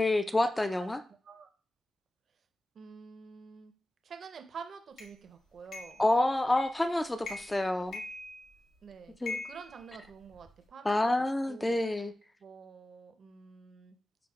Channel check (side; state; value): both; normal; correlation 0.95